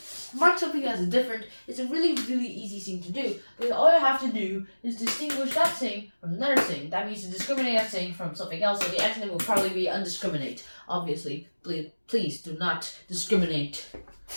Mark something as different is a really, really easy thing to do. Because all you have to do is distinguish that thing from another thing. That means to discriminate that thing from something else. So the antonym will probably be undiscriminate. Obviously, please do not discriminate.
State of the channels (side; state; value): both; inverted; correlation -1.00